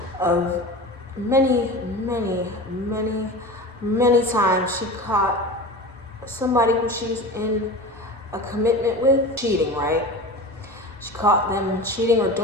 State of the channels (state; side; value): normal; both; correlation 0.31